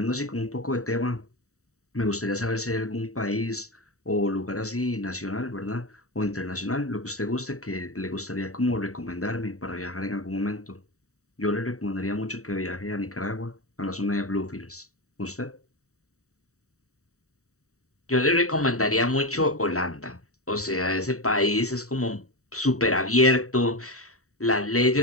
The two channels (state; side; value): late; right; 0.65 ms